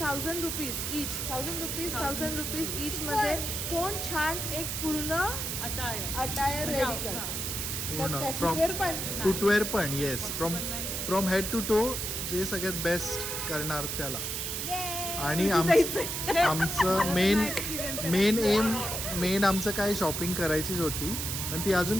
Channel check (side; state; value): right; noise; hiss, 3 dB below the sound